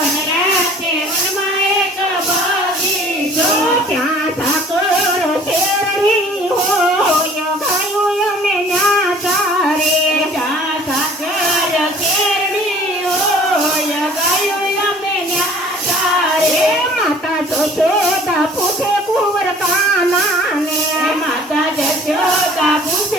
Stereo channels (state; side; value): normal; both; correlation 0.51